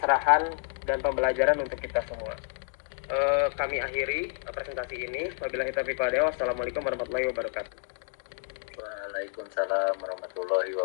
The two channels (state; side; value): silent; right; digital silence